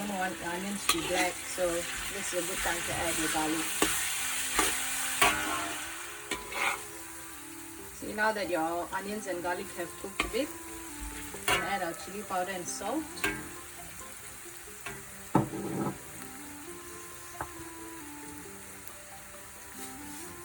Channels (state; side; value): identical; both; correlation 1.00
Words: want the onions to be black, so this is a good time to add your garlic. See, now that your onions and garlic have cooked a bit, we can add our chili powder and salt.